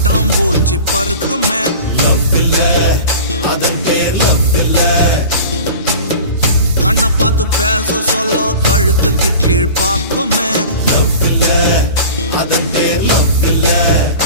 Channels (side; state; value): both; inverted; correlation -0.37